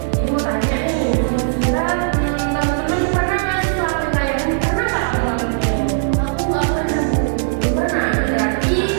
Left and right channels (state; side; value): silent; left; digital silence